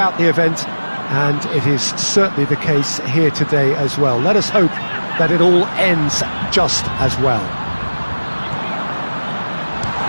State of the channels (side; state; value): both; inverted; correlation -1.00